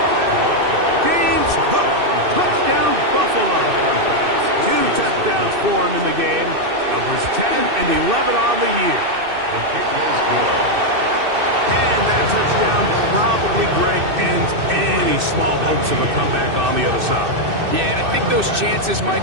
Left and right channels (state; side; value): late; left; 2.6 ms